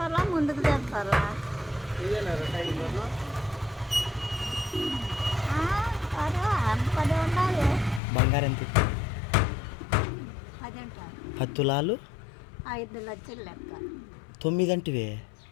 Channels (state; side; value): drops out; right; at 8.0 s